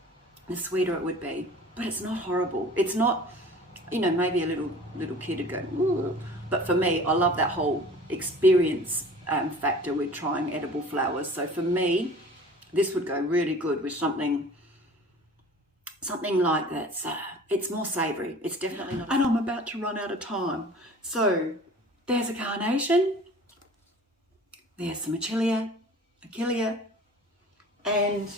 the sweeter it would be. But it's not horrible. It's not, you know, maybe a little kid would go, ooh. But for me, I love that whole experience factor with trying edible flowers. So for me, this would go really good with something like that. So it's more savoury. It's definitely not. And I'm about to run out of time. So there's a carnation. There's some achillea, and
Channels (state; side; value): normal; both; correlation 0.44